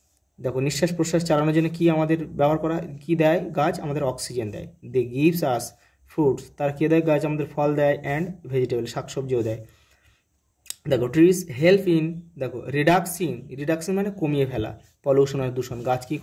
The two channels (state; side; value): identical; both; correlation 1.00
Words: দেখো নিঃশ্বাস প্রশ্বাস চালানোর জন্য কি আমাদের ব্যবহার করা, কি দেয় গাছ, আমাদের অক্সিজেন দেয়। দে গিভস আস ফ্রুটস, তার কে দেয় গাছ, আমাদের ফল দেয়, অ্যান্ড ভেজিটেবল শাকসবজিও দেয়। দেখো ট্রিজ হেল্প ইন, দেখো রিডাকশন মানে কমিয়ে ফেলা, পলিউশন আর দূষণ, গাছ কী